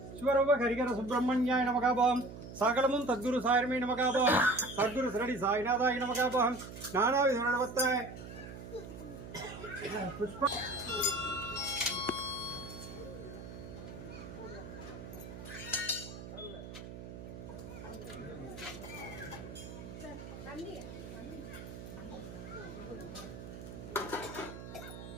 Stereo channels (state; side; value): noise; right; hum, 11 dB below the sound